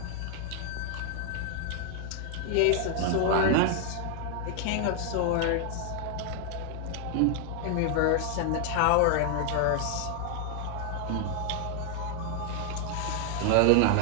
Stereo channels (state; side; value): different; both; correlation 0.00